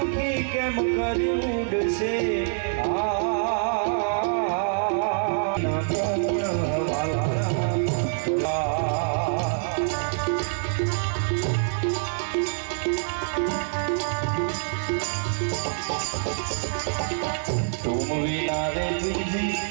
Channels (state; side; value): silent; left; 56 dB below the other